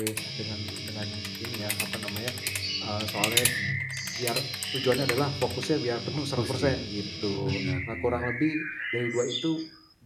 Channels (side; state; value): both; identical; correlation 1.00